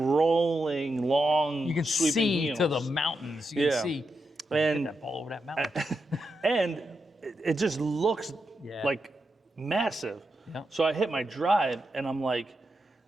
long, you can sweeping see hills. to the mountains. You can see and that ball over that mountain. And it just looks like massive. Yeah. So I hit my drive and I'm like,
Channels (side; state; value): both; normal; correlation 0.86